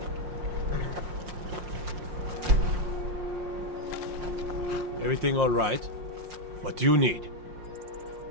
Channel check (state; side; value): late; left; 5.6 ms